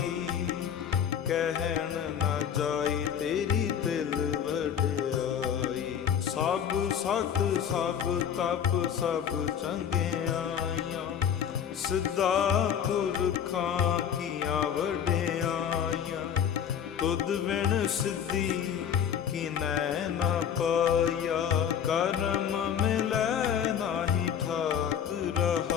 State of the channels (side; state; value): right; quieter; 8.5 dB